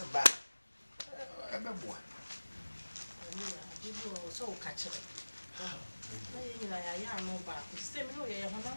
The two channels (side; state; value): both; inverted; correlation -1.00